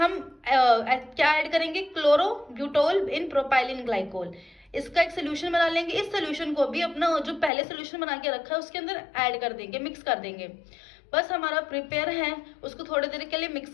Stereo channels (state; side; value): drops out; right; at 7.5 s